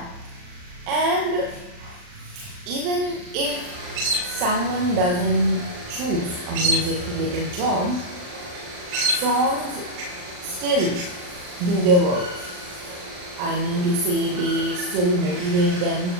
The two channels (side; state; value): left; late; 39 ms